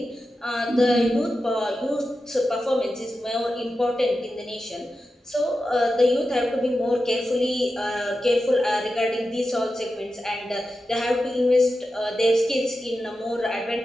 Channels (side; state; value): both; normal; correlation 0.91